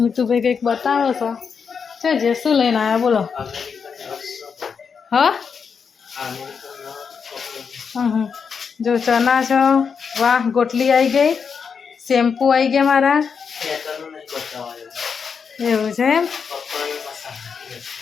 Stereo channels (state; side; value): quieter; right; 6.1 dB